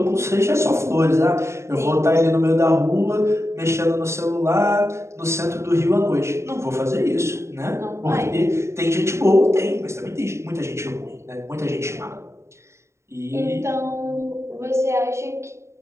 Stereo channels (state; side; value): late; left; 0.13 ms